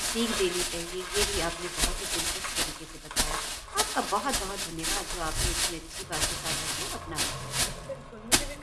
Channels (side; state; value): both; identical; correlation 1.00